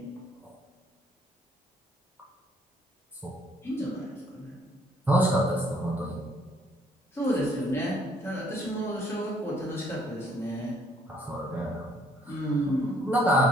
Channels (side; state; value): both; normal; correlation 0.65